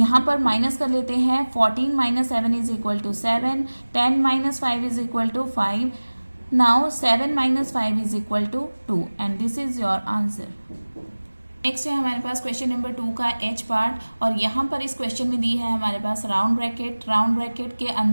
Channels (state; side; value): inverted; both; correlation -1.00